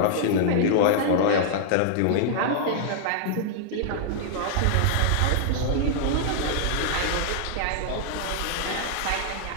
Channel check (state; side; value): different; both; correlation -0.01